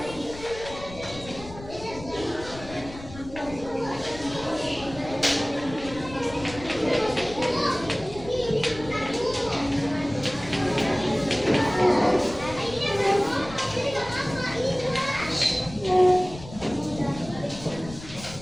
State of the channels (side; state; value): left; noise; rumble, 15 dB below the sound